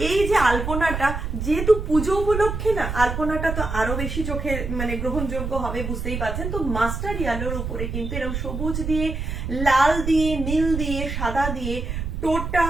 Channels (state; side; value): noise; right; rumble, 4 dB below the sound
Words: এই যে আলপনাটা, যেহেতু পুজো উপলক্ষে না, আলপনাটা তো আরো বেশি চোখে মানে গ্রহণযোগ্য হবে, বুঝতেই পারছেন। তো মাস্টার ইয়েলোর উপরে কিন্তু এরকম সবুজ দিয়ে, লাল দিয়ে, নীল দিয়ে, সাদা দিয়ে